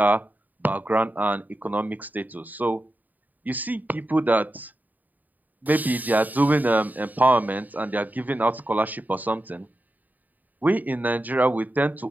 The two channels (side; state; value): left; late; 0.083 ms